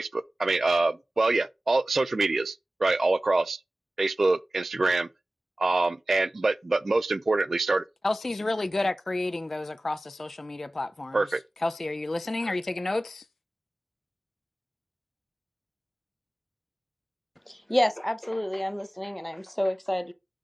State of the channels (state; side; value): normal; both; correlation 0.97